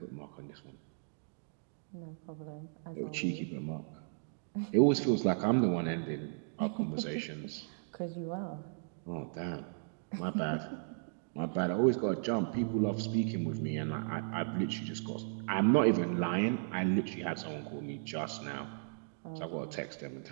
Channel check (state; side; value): silent; left; digital silence